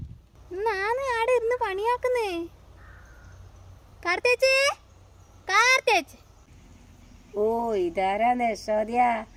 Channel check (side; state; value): both; identical; correlation 1.00